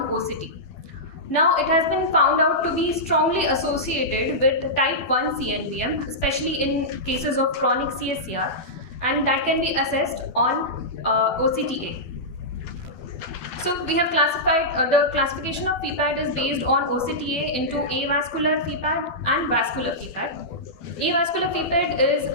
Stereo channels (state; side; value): late; right; 12 ms